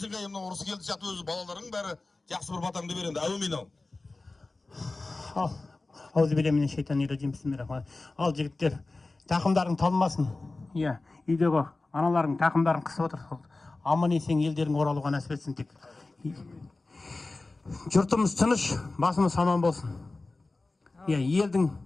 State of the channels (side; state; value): right; quieter; 3.3 dB